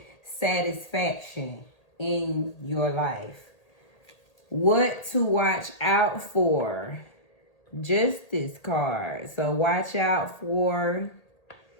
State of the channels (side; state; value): right; late; 1.8 ms